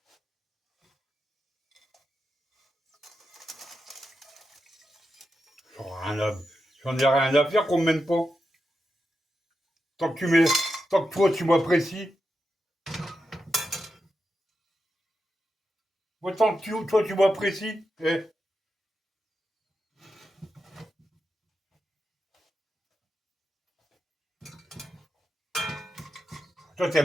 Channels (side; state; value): both; normal; correlation 0.88